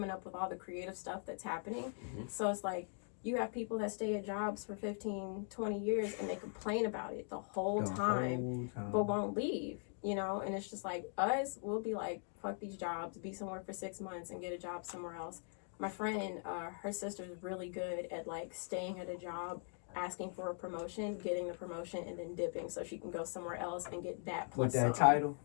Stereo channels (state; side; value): silent; right; 50 dB below the other